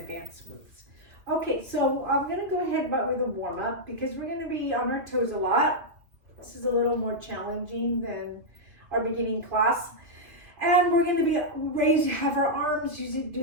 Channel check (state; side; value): late; left; 2.7 ms